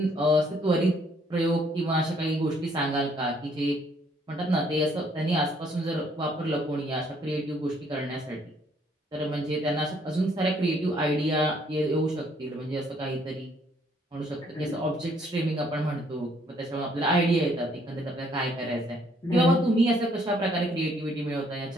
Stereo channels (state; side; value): normal; both; correlation 0.66